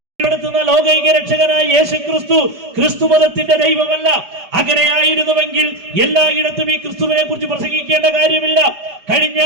ലോകൈക രക്ഷകനായ യേശു ക്രിസ്തു ക്രിസ്തു മതത്തിന്റെ ദൈവമല്ല. അങ്ങനെയായിരുന്നുവെങ്കിൽ എല്ലായിടത്തും ഈ ക്രിസ്തുവിനെ കുറിച്ച് പ്രസംഗിക്കേണ്ട കാര്യമില്ല. കഴിഞ്ഞ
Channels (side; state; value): left; late; 4.9 ms